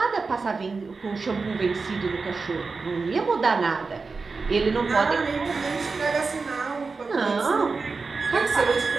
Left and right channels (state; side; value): quieter; left; 4.3 dB